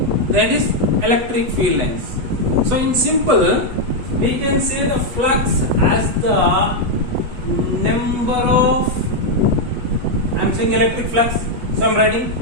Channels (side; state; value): left; late; 8.1 ms